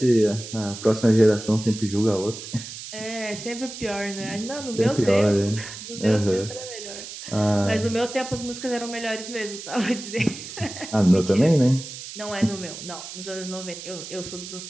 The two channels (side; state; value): right; noise; hiss, 11 dB below the sound